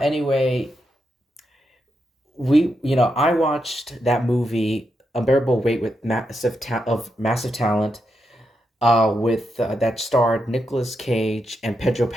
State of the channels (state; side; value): normal; both; correlation 0.84